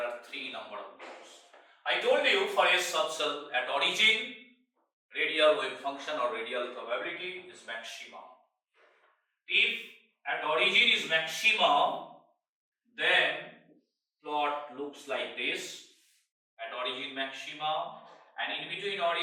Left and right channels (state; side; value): identical; both; correlation 1.00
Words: 3 number of nodes. I told you for S subcell at origin, radial wave function or radial probability is maximum. If at origin is maximum, then plot looks like this. At origin maximum, and in between